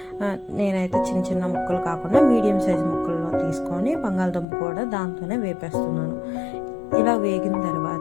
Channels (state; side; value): drops out; right; at 4.5 s